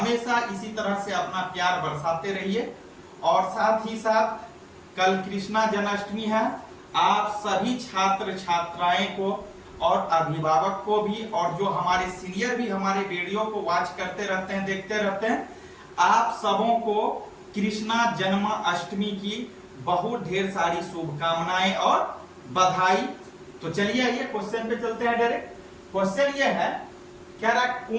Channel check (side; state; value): both; identical; correlation 1.00